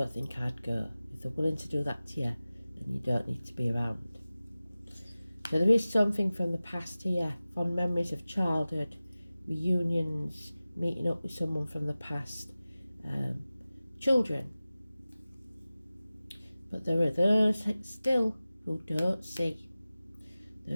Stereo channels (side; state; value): both; inverted; correlation -0.96